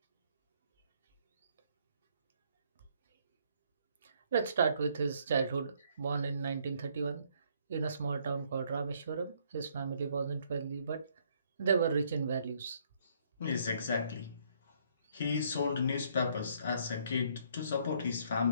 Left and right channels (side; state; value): both; inverted; correlation -0.67